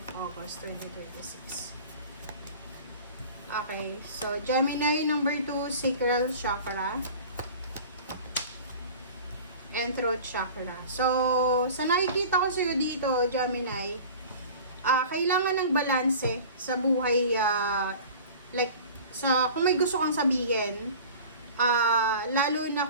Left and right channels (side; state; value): both; inverted; correlation -0.40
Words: August 2026. Okay, so Gemini number 2, sacral chakra and throat chakra. So, sa nakikita ko sa'yo dito, Gemini, kailangan ng balanse sa buhay, like, kung may gusto kang sabihin, lalo na